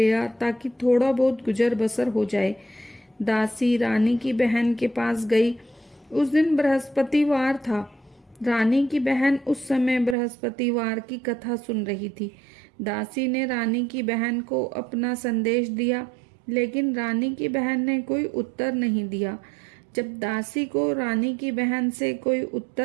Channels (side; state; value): left; drops out; at 10.2 s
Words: आ ताकि थोड़ा बहुत गुजर बसर हो जाए। दासी रानी की बहन के पास गई। उस दिन बृहस्पतिवार था। रानी की बहन उस समय बृहस्पतिवार की कथा सुन रही थी। दासी ने रानी की बहन को अपना संदेश दिया, लेकिन रानी की बहन ने कोई उत्तर नहीं दिया। जब दासी को रानी की बहन से कोई